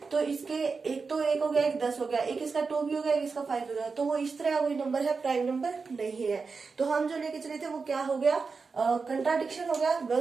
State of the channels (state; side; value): quieter; left; 4.7 dB